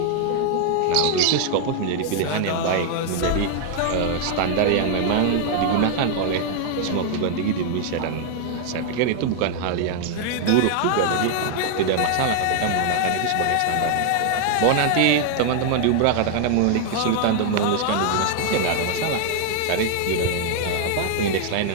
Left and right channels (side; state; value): both; different; correlation 0.00